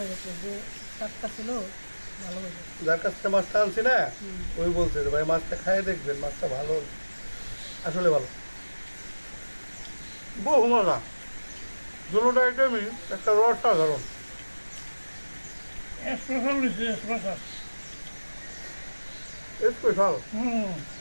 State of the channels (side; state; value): both; inverted; correlation -1.00